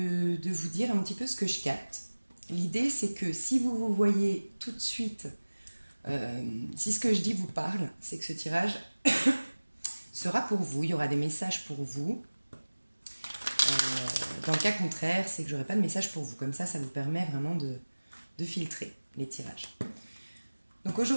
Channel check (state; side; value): inverted; both; correlation -1.00